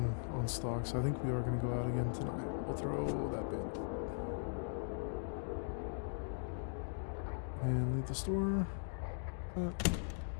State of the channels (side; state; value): right; silent; digital silence